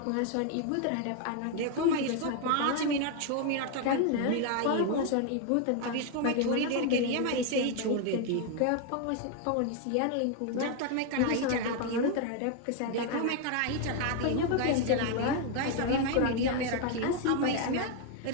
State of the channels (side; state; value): both; different; correlation 0.01